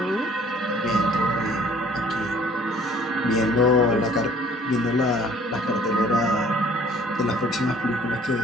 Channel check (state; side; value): normal; both; correlation 0.56